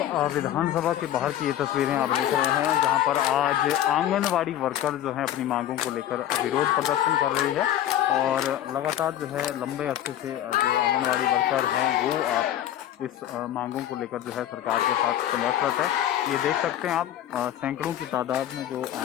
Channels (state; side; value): quieter; right; 11.9 dB